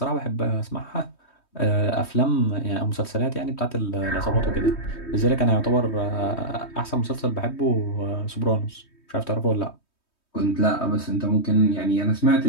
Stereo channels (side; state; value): right; late; 3.2 ms